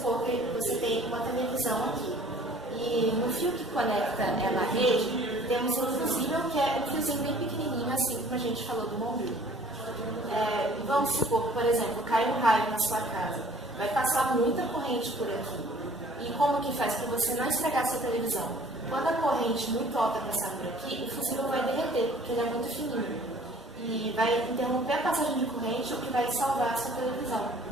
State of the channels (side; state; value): both; normal; correlation 0.53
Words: que você tem uma televisão aqui e no fio que conecta ela à rede, temos um fusível que é um fiozinho bem pequenininho, assim como a gente falou do bombril. Vamos supor que, por exemplo, cai um raio na sua casa, vai passar muita corrente por aqui. E como que faz para você não estragar a sua televisão? Quando a corrente muito alta passar por aqui, o fusível vai derreter, porque ele é muito fininho. E vai interromper a passagem de corrente, o que vai salvar a sua televisão.